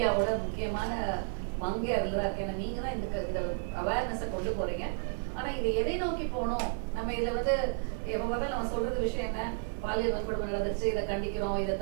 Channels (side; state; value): left; silent; digital silence